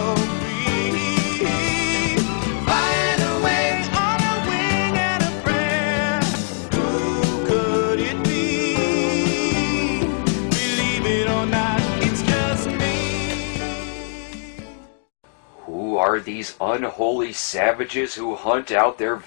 free. Flying away on a wing and a prayer. Who could it be? Believe it or not, it's just me. Who are these unholy savages who hunt out their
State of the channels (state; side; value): silent; right; 61 dB below the other